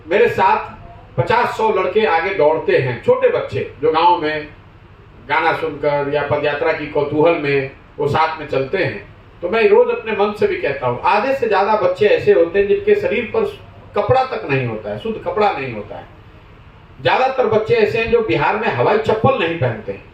मेरे साथ 50-100 लड़के आगे दौड़ते हैं, छोटे बच्चे जो गांव में गाना सुनकर या पदयात्रा की कौतूहल में वो साथ में चलते हैं, तो मैं रोज अपने मन से भी कहता हूँ, आधे से ज्यादा बच्चे ऐसे होते हैं जिनके शरीर पर कपड़ा तक नहीं होता है, शुद्ध कपड़ा नहीं होता है। ज्यादातर बच्चे ऐसे हैं जो बिहार में हवाई चप्पल नहीं पहनते हैं।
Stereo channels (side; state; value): both; identical; correlation 1.00